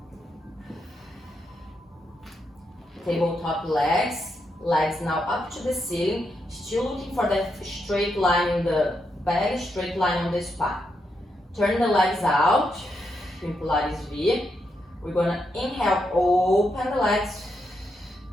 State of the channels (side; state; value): both; normal; correlation 0.82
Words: Tabletop legs. Legs now up to the ceiling. Still looking for that straight line in the back, straight line on the spine. Turn the legs out in Pilates V. We're gonna inhale, open the legs.